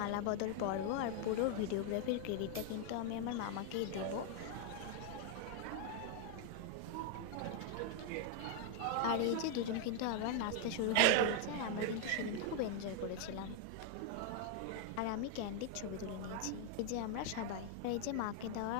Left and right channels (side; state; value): both; different; correlation 0.00